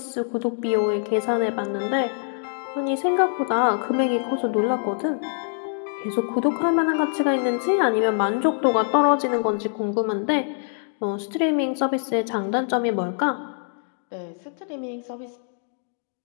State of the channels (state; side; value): silent; right; digital silence